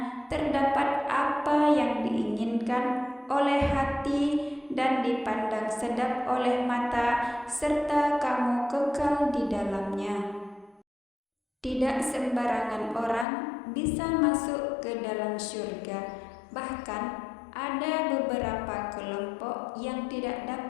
terdapat apa yang diinginkan oleh hati dan dipandang sedap oleh mata, serta kamu kekal di dalamnya. Tidak sembarangan orang bisa masuk ke dalam surga, bahkan ada beberapa kelompok yang tidak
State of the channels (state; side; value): drops out; right; at 13.2 s